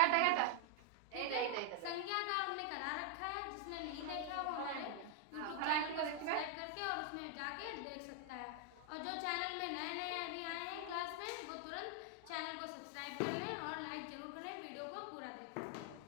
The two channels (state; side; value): different; both; correlation 0.00